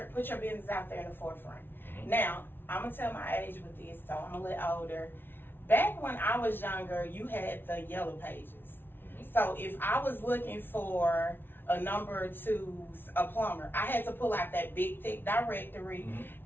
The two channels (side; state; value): right; late; 0.10 ms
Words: business out there in the forefront. Now, I'm gonna tell my age with this, so I'm a little older. Back when I was younger, you had the yellow pages. So if I was looking for a number 2, a plumber, I had to pull out that big thick directory